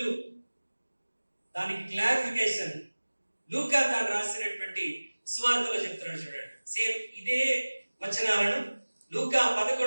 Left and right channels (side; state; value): both; inverted; correlation -1.00